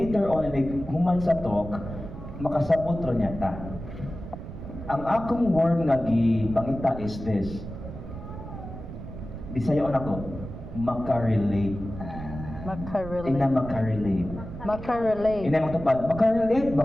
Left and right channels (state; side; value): noise; right; rumble, 10 dB below the sound